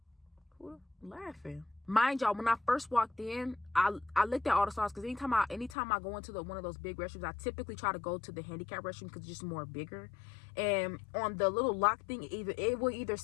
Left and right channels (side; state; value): right; drops out; at 5.8 s